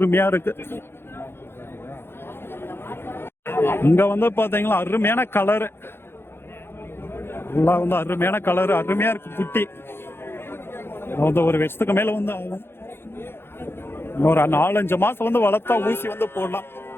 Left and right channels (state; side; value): late; right; 0.11 ms